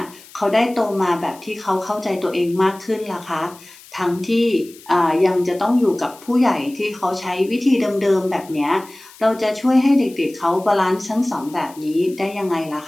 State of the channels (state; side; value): noise; left; hiss, 22 dB below the sound